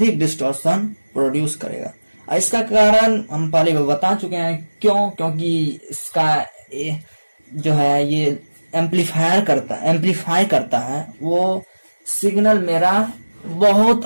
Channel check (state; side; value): inverted; both; correlation -1.00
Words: डिस्टॉर्शन प्रोड्यूस करेगा। इसका कारण हम पहले बता चुके हैं, क्यों, क्योंकि इसका जो है ये एम्पलीफाई करता है, वो सिग्नल मेरा बहुत